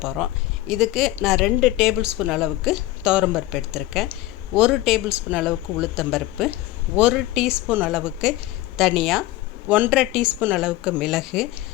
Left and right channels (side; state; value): right; quieter; 16.6 dB